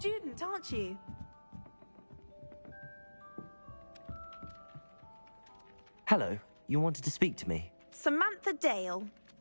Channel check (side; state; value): both; inverted; correlation -1.00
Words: aren't you? Hello, you wanted to speak to me? Samantha Dale.